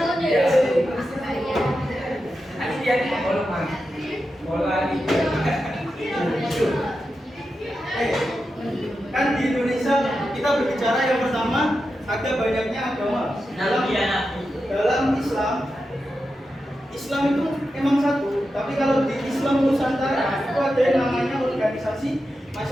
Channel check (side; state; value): both; normal; correlation 0.89